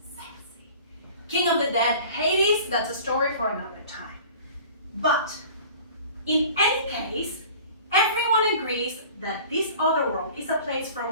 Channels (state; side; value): inverted; both; correlation -0.44